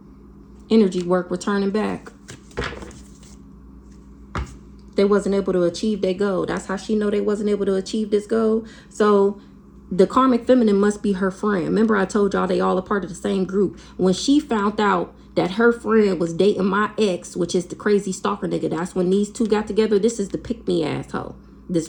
Energy work returning back. They wasn't able to achieve their goal. That's how she know they wasn't able to achieve this goal. So the karmic feminine must be her friend. Remember I told y'all they all a part of the same group. When she found out that her friend was dating my ex, which is the crazy stalker nigga, that's when these two got together. This is the pick-me asshole. This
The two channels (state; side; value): identical; both; correlation 1.00